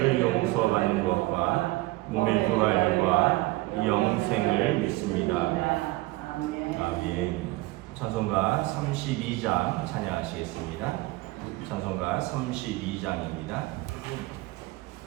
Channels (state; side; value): quieter; left; 20.3 dB